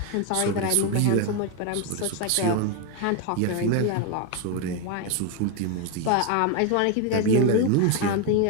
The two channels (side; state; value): both; different; correlation 0.01